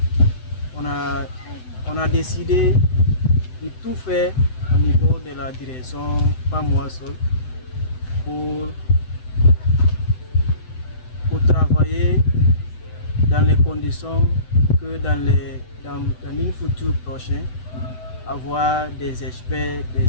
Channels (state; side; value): late; right; 7.9 ms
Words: On a décidé de tout faire au niveau de la direction, pas moi seul, pour travailler dans les conditions que dans une future prochaine, avoir des experts, des